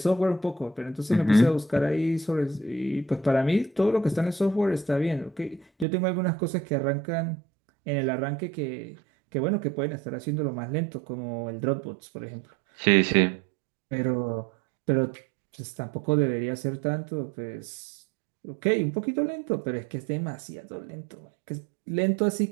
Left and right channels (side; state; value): left; drops out; at 5.9 s